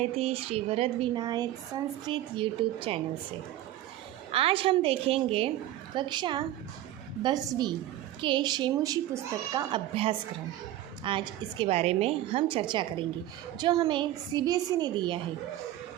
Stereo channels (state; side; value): quieter; left; 13.9 dB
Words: Shri Varad Vinayak Sanskrit YouTube channel से। आज हम देखेंगे कक्षा 10वीं के शेमुशी पुस्तक का अभ्यासक्रम। आज इसके बारे में हम चर्चा करेंगे जो हमें सीबीएसई ने दिया है।